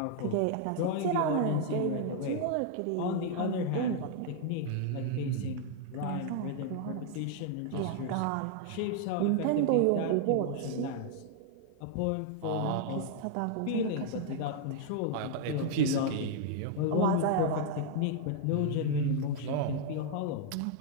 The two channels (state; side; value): different; both; correlation 0.00